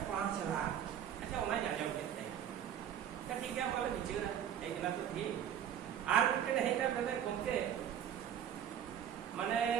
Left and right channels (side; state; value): left; quieter; 9.5 dB